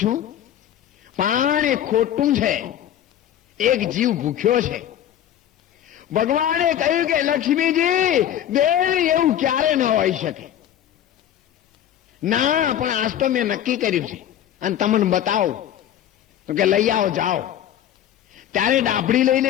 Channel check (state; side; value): quieter; right; 10.9 dB